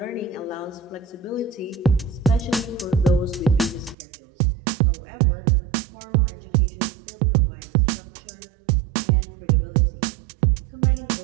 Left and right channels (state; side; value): drops out; left; at 4.0 s